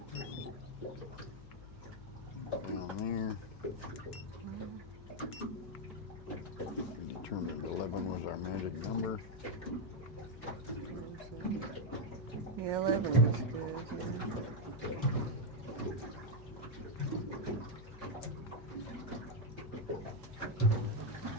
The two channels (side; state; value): left; noise; hum, 15 dB below the sound